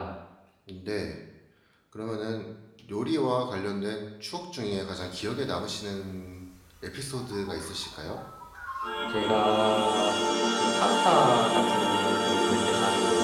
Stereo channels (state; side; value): identical; both; correlation 1.00